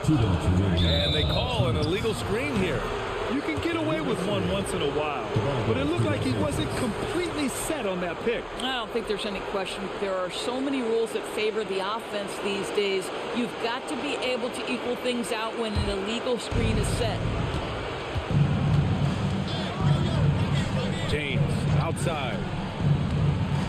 And they call an illegal screen here. You can get away with one once in a while, but it looked like he wasn't completely set on that pick. I don't think there's any question. There are so many rules that favor the offense these days. You've got to be able to equal things out when an illegal screen is set. James outside.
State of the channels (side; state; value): both; identical; correlation 1.00